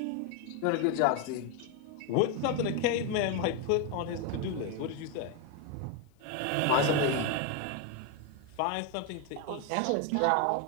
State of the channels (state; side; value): different; both; correlation 0.01